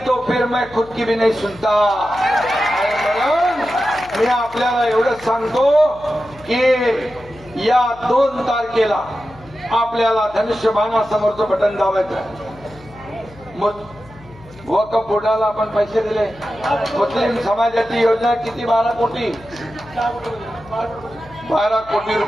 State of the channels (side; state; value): left; noise; hum, 22 dB below the sound